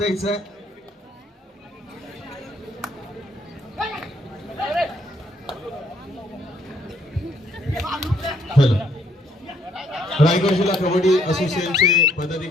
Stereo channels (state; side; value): normal; both; correlation 0.67